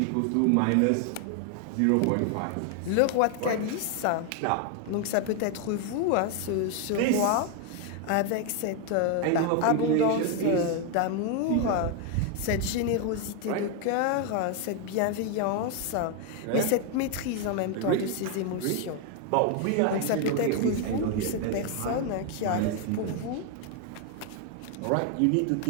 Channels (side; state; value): both; different; correlation 0.01